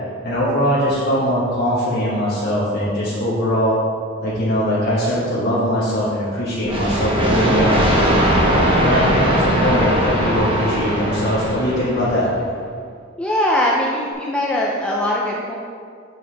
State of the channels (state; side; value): normal; both; correlation 0.32